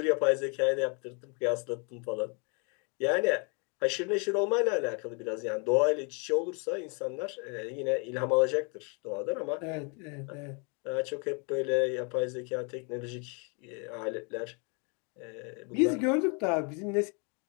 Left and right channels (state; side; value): quieter; right; 35.4 dB